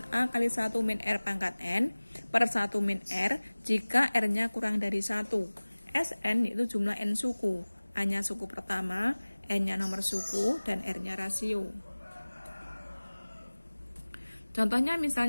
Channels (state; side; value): inverted; both; correlation -1.00